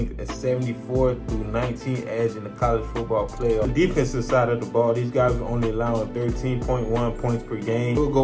a 74-19 edge in the college football playoff. The defensive side of the ball, these guys are only allowing 13.1 points per game. They will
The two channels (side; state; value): both; identical; correlation 1.00